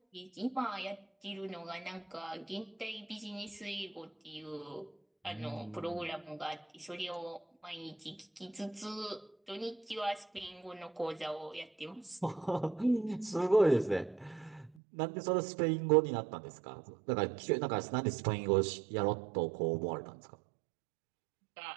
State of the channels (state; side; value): drops out; left; at 14.7 s